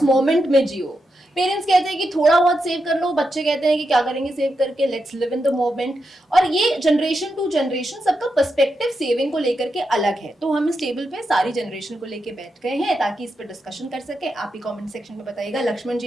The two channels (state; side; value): normal; both; correlation 0.86